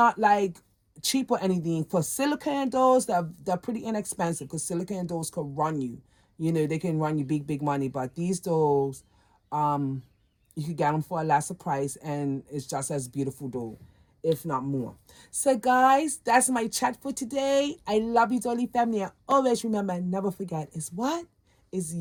like cheap or anything, for silicone dolls, they're pretty inexpensive, because silicone dolls could run you. They can run you big, big money. But these dolls, you could get them for a lesser price, and it's just as beautiful doll, if not more. So guys, that's my chat for today. I love you, Dolly family. And always remember, never forget, is what? Is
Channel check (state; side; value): identical; both; correlation 1.00